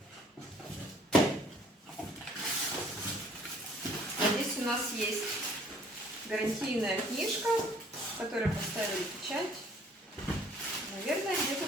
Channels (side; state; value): both; normal; correlation 0.58